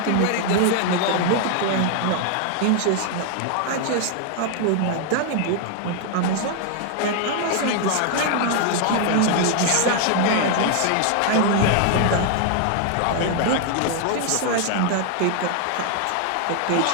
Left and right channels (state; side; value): different; both; correlation 0.00